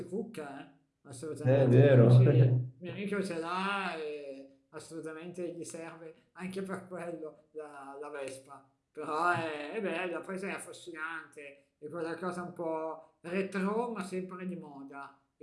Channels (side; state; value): both; identical; correlation 1.00